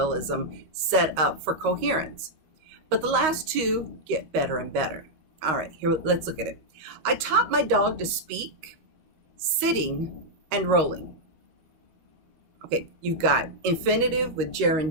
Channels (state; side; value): late; left; 13 ms